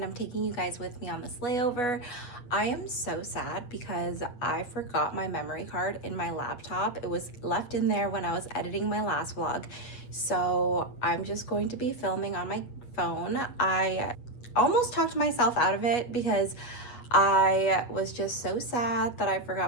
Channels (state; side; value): late; right; 8.3 ms